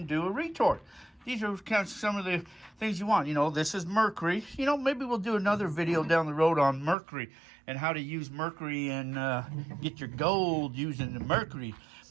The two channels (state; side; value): drops out; left; at 7.0 s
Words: do a retort. These are kind of some of the things you want. This is mercury. Maybe we'll do another video down the road on mercury and how to use mercury and get your gold using the mercury.